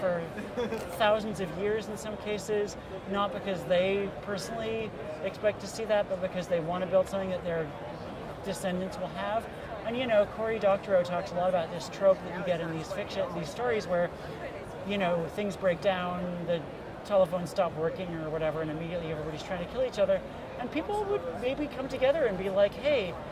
thousands of years in some cases, not because they personally expect to see that, but because they want to build something that their descendants will have. And Cory Doctorow talks a lot about this trope that you get in these stories where, things break down, the telephones stop working or whatever, and immediately everybody's trying to kill each other. And people would maybe come together and be like, hey,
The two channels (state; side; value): identical; both; correlation 1.00